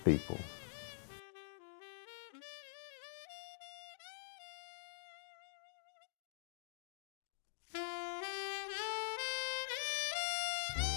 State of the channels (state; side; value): silent; right; digital silence